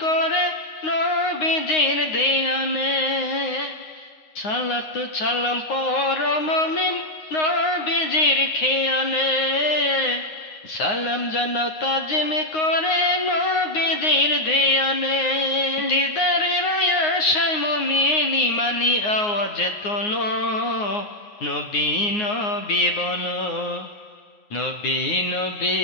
করে নবীজির ধ্যানে সালাত সালাম পর মুমিন নবীজির খেয়ালে সালাম জানাও তাজমে করে নবীজির ধ্যানে দিদারের আশায় মুমিন ইমানি আওয়াজ তোলো নবী নবী বলো নবী নবী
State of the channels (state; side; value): late; right; 9.6 ms